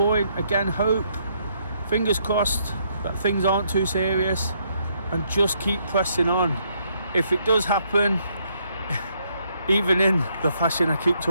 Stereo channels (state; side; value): inverted; both; correlation -0.72